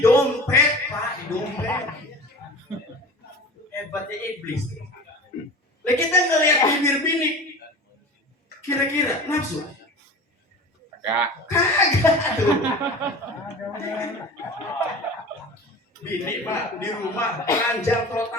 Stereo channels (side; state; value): both; normal; correlation 0.36